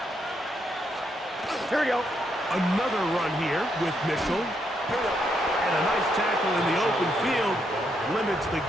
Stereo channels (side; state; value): both; normal; correlation 0.78